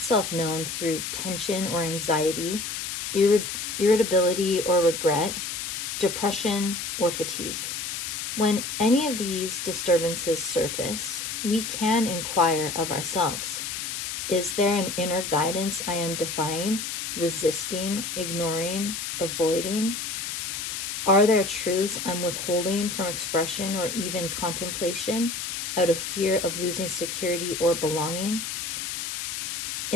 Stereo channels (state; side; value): noise; left; hiss, 4 dB below the sound